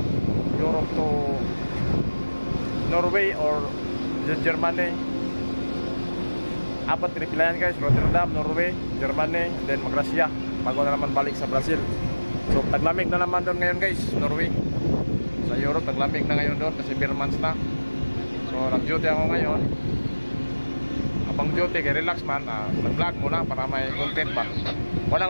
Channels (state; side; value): inverted; both; correlation -1.00